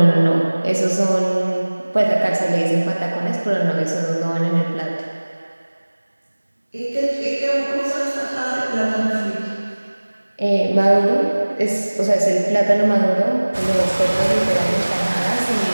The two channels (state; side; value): inverted; both; correlation -1.00